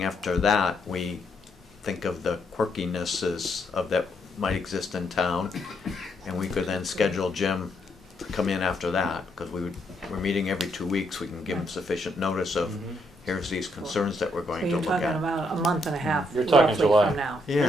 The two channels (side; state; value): both; normal; correlation 0.75